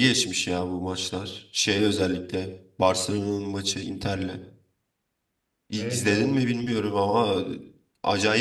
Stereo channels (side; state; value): both; identical; correlation 1.00